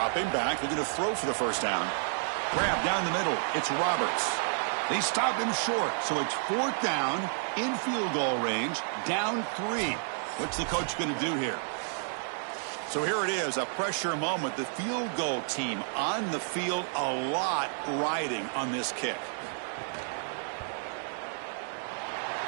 back, looking to throw for the first down. Grab down the middle. It's Roberts. They stop him short, so it's fourth down, in field goal range, down 3. What's the coach going to do here? So here it is, a pressure moment. The field goal team on the field, a lot riding on this kick.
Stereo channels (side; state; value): left; silent; 57 dB below the other